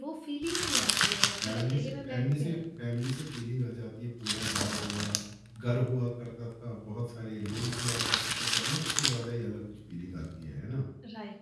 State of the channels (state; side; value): identical; both; correlation 1.00